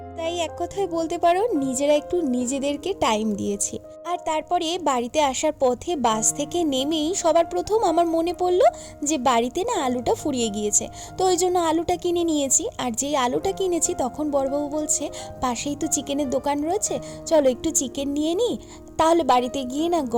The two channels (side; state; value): both; identical; correlation 1.00